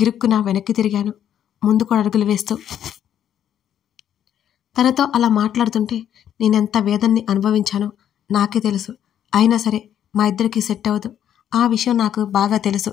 వెనక్కి తిరిగాను, ముందుకు అడుగులు వేస్తూ. తనతో అలా మాట్లాడుతుంటే నేనెంత వేదన్ని అనుభవించానో నాకే తెలుసు. అయినా సరే మా ఇద్దరికి సెట్ అవ్వదు. ఆ విషయం నాకు బాగా తెలుసు.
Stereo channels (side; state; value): right; quieter; 10.0 dB